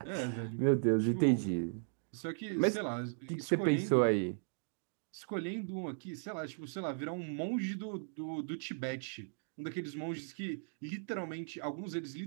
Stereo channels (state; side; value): silent; left; digital silence